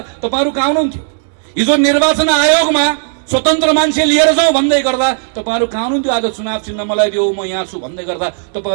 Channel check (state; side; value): silent; left; digital silence